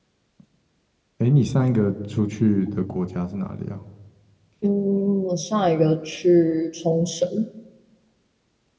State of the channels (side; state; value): both; identical; correlation 1.00